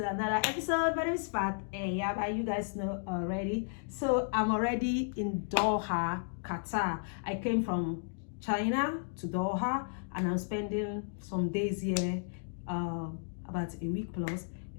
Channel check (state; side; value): silent; right; digital silence